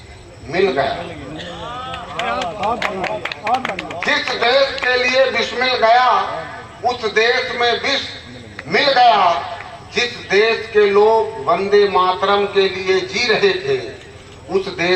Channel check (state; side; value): identical; both; correlation 1.00